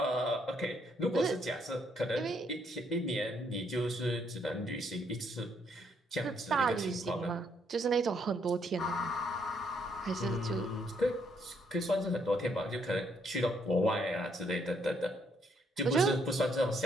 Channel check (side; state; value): both; normal; correlation 0.71